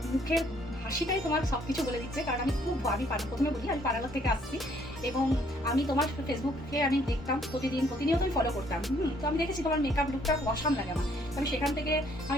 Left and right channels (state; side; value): normal; both; correlation 0.65